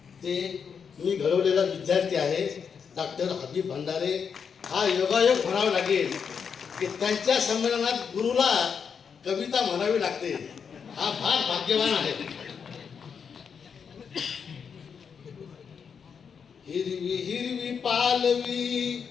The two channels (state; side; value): quieter; right; 6.6 dB